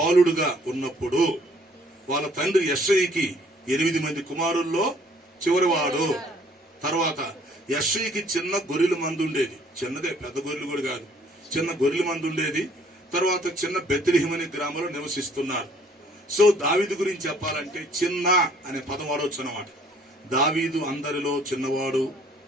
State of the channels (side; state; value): both; normal; correlation 0.60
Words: ఉన్నప్పుడు వాళ్ళ తండ్రి యెష్షయికి 8 మంది కుమారుల్లో చివరివాడు. తర్వాత యెష్షయికి చిన్న గొర్రెల మంది ఉండేది, చిన్నదే, పెద్ద గొర్రెలు కూడా కాదు, చిన్న గొర్రెల మంది ఉండేది. తర్వాత చిన్న బెత్లెహేము అనే గ్రామంలో నివసిస్తున్నారు. సో దావీదు గురించి చెప్పాలంటే చిన్న అనే పదం వాడవచ్చు అన్నమాట. దావీదు అందరిలో చిన్నవాడు,